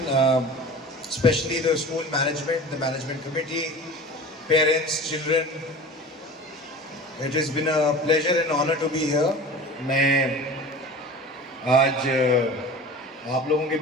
especially the school management, the management committee, parents, children. It has been a pleasure and honor to be here. मैं आज आप लोगों के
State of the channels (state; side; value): normal; both; correlation 0.37